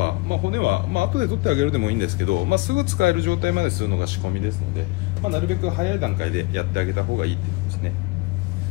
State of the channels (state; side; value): quieter; right; 23.8 dB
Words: 骨は、後で取ってあげるでもいいんですけど、すぐ使える状態までするのが仕込みですので、なるべく早い段階でやってあげた方がいいってことですね。